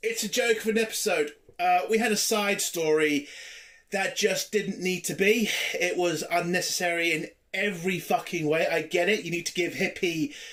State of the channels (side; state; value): both; identical; correlation 1.00